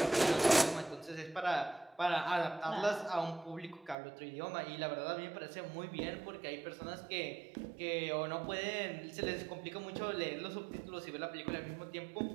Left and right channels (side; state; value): left; drops out; at 4.0 s